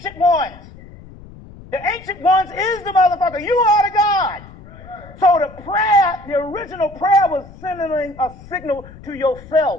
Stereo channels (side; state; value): left; noise; rumble, 19 dB below the sound